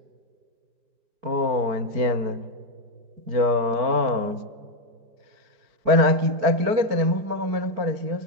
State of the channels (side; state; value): left; late; 4.5 ms